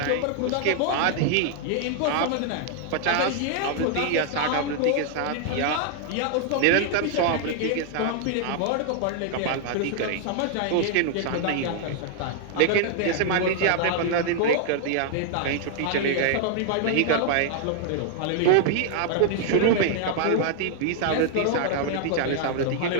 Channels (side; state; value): both; different; correlation 0.00